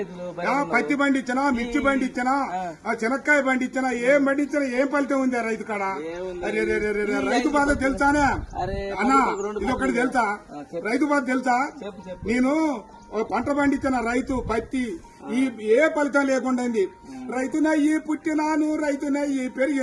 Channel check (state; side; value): identical; both; correlation 1.00